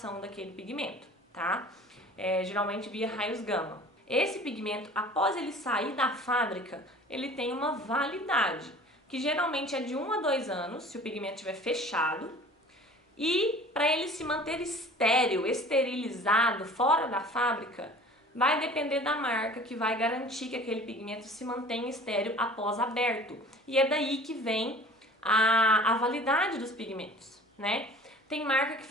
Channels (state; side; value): normal; both; correlation 0.45